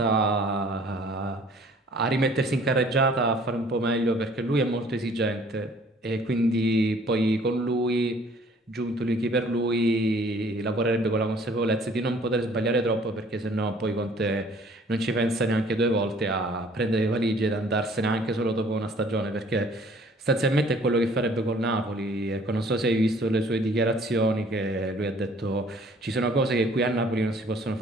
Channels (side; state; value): both; normal; correlation 0.55